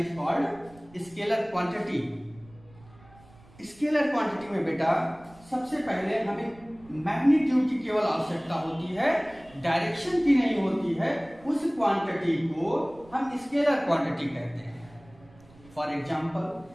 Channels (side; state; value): right; noise; rumble, 25 dB below the sound